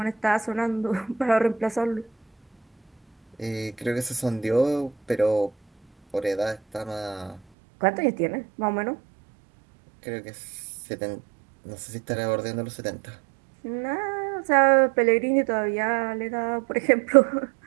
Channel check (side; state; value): left; drops out; at 7.4 s